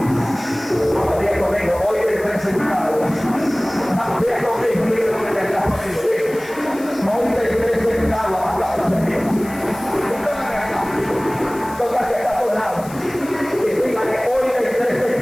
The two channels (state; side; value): noise; left; hiss, 19 dB below the sound